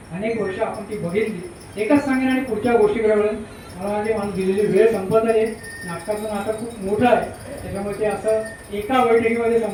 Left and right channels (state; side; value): identical; both; correlation 1.00